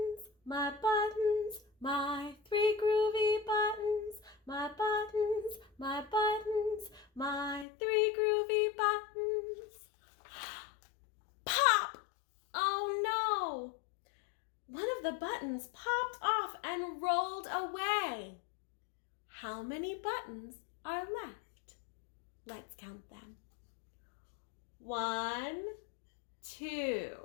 my three groovy buttons, my buttons, my three groovy buttons. Pop! Oh no! One of the buttons popped off and rolled away. How many buttons are left? Let's count them. 1,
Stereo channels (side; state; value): right; drops out; at 7.7 s